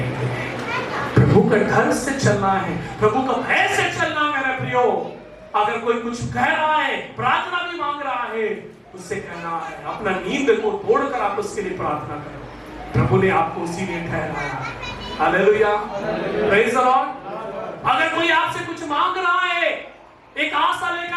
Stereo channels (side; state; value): both; identical; correlation 1.00